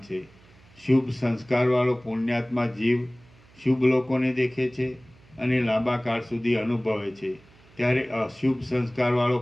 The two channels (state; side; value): noise; right; hum, 27 dB below the sound